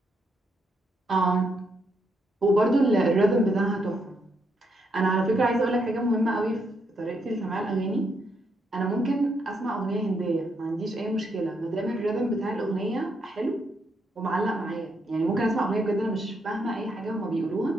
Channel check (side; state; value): both; normal; correlation 0.77